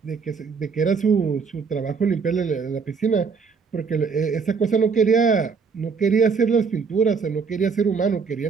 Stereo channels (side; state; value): left; quieter; 5.4 dB